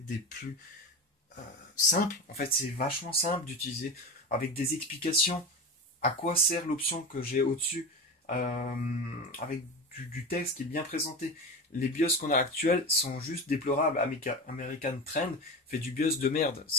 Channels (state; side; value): normal; both; correlation 0.25